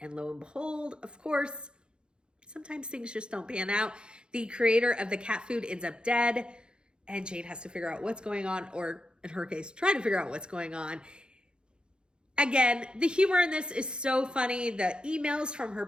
lo and behold, of course, sometimes things just don't pan out. The creator of the cat food ends up dead, and Jane has to figure out what's going on, or in her case, try to figure out what's going on. Again, the humor in this is so funny. The emails from her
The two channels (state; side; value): late; left; 0.051 ms